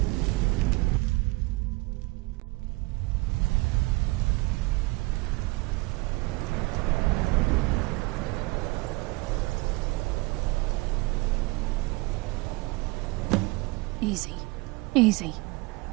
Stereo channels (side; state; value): left; quieter; 24.2 dB